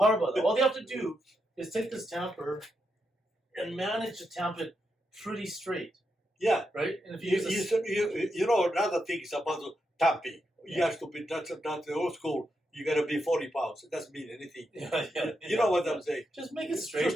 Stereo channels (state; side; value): normal; both; correlation 0.84